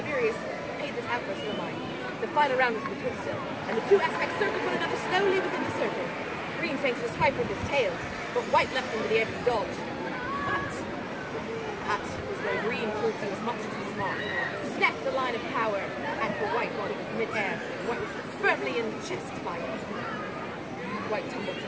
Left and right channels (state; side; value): identical; both; correlation 1.00